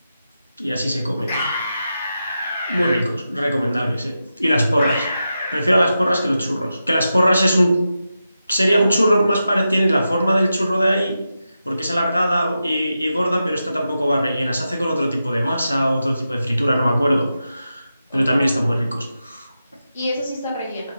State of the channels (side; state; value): both; inverted; correlation -0.89